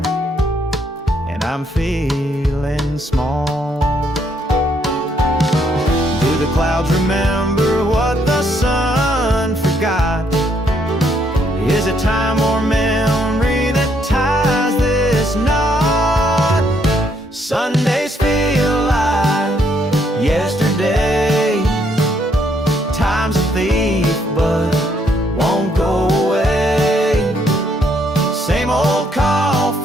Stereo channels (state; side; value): normal; both; correlation 0.71